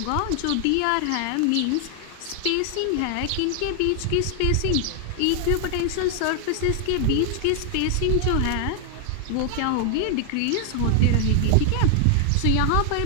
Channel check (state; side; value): different; both; correlation 0.00